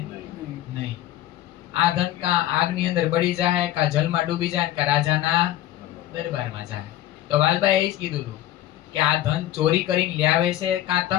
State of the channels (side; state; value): right; quieter; 13.6 dB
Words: નહીં. આ ધન કા આગની અંદર બળી જાય, કા જલમાં ડૂબી જાય, કા રાજાના દરબારમાં જાય. તો વાલબાઈએ એ જ કીધું હતું કે આ ધન ચોરી કરીને લાવે છે, કાં